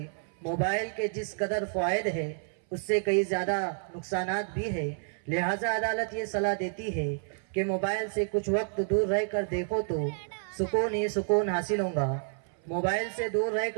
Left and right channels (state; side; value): silent; left; 57 dB below the other